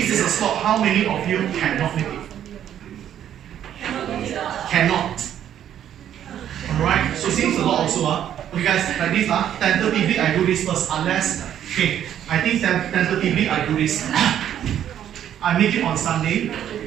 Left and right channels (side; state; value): left; quieter; 10.4 dB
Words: is a slot, how many of you cannot make it? Cannot. this first, unless, okay, I think tentatively I do this. I make it on Sunday,